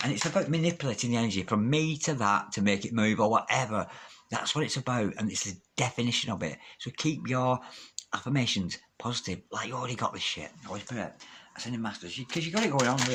and it's about manipulating the energy from me to that to make it move or whatever. That's what it's about, and it's the definition of it. So keep your affirmations positive, like you already got this shit. Holy Spirit, ascending masters, because you've got it going on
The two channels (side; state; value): both; identical; correlation 1.00